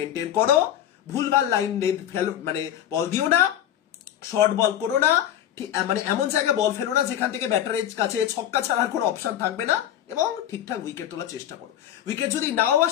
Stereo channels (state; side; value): quieter; right; 11.1 dB